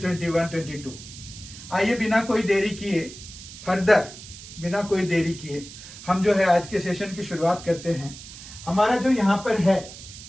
आइए बिना कोई देरी किए हम जो है आज के सेशन की शुरुआत करते हैं। हमारा जो यहाँ पर है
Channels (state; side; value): noise; right; hiss, 15 dB below the sound